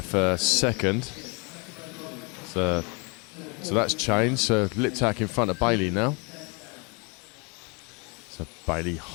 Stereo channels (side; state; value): right; quieter; 31.5 dB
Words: for second. So that's changed. So Liptak in front of Bailey now. So Bailey